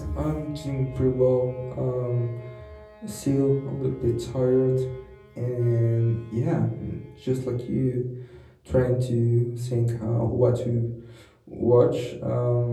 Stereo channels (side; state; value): both; identical; correlation 1.00